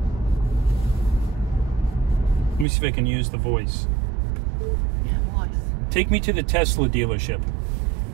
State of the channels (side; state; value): left; drops out; at 2.7 s